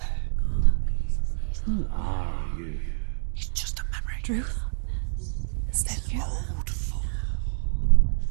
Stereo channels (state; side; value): silent; left; digital silence